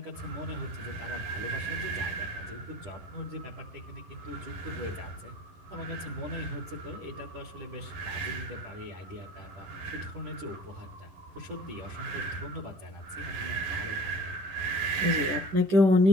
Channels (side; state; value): left; late; 11 ms